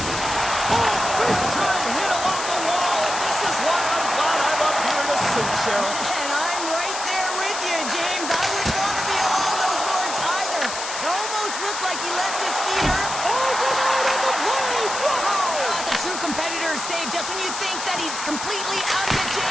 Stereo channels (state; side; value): noise; left; hiss, 6 dB below the sound